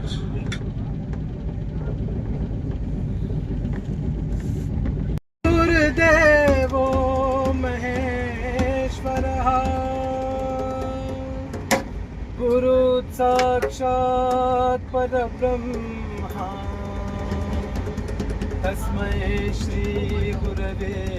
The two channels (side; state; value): both; identical; correlation 1.00